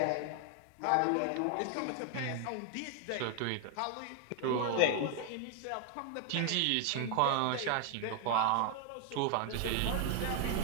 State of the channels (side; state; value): both; different; correlation 0.00